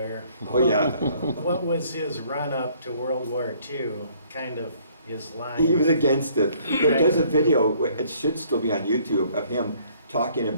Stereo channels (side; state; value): both; inverted; correlation -0.61